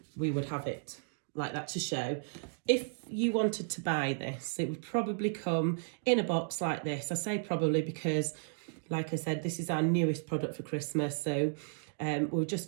have it like that to show. If you wanted to buy this, it would probably come in a box like this. I say probably because, like I said, this is our newest product for Christmas. So we're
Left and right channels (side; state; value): left; silent; digital silence